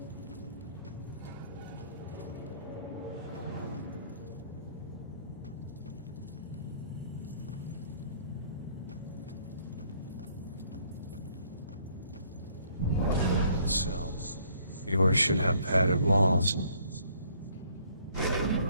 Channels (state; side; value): inverted; both; correlation -0.63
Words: Cells. Yours should have padded walls.